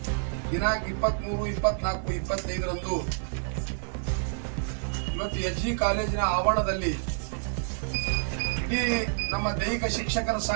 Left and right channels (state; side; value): silent; left; digital silence